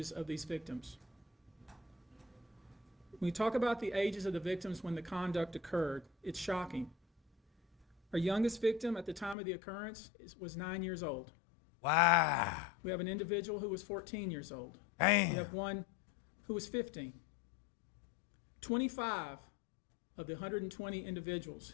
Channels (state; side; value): drops out; right; at 9.3 s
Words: of these victims. When we talk about the ages of the victims when the conduct occurred, it's shocking. Our youngest victim at the time of the occurrence was 9 years old. Wow. We have an individual who was 14 years old. Damn. We have one who was 15. 25 of the 120 individuals